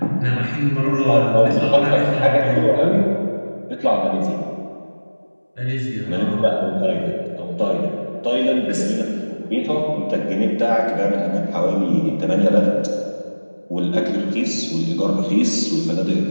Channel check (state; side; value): inverted; both; correlation -1.00